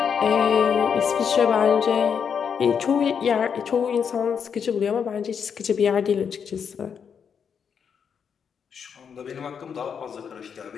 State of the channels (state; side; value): quieter; right; 7.0 dB